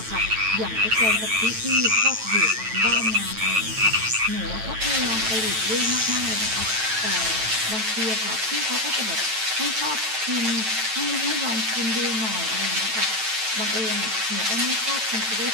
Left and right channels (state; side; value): late; left; 9.1 ms